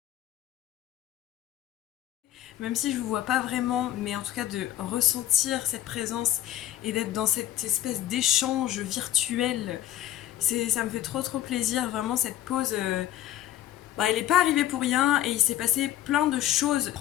Même si je vous vois pas vraiment, mais en tout cas de ressentir cette présence et d'être dans cette espèce d'échange virtuel, ça me fait trop plaisir. Vraiment cette pause, elle n'est pas arrivée pour rien et il s'est passé plein de choses à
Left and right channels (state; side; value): quieter; right; 12.7 dB